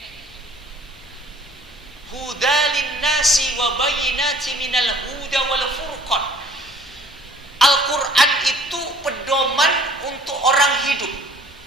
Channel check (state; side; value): normal; both; correlation 0.53